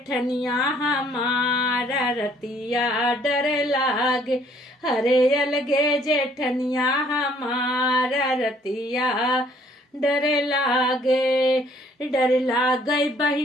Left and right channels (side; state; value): both; normal; correlation 0.62